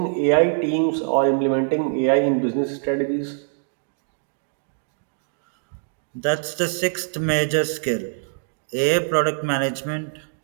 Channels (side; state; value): left; silent; digital silence